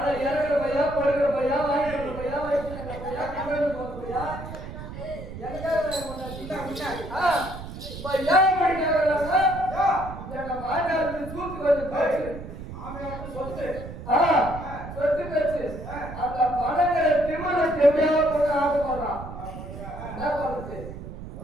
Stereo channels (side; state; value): right; noise; rumble, 11 dB below the sound